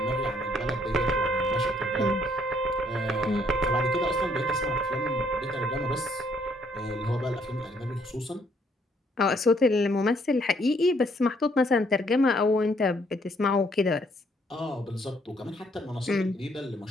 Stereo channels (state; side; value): normal; both; correlation 0.67